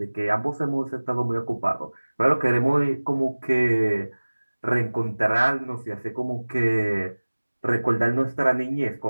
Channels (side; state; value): both; inverted; correlation -1.00